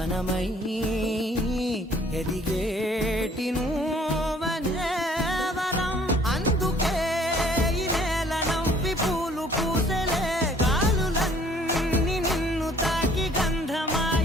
ఎదిగేటి నువ్వనే వరం. అందుకే ఈ నేల నవ్వి పూలు పూసెలే, గాలులన్నీ నిన్ను తాకి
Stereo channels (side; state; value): both; normal; correlation 0.58